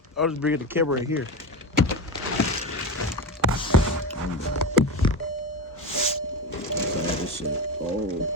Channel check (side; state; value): both; normal; correlation 0.20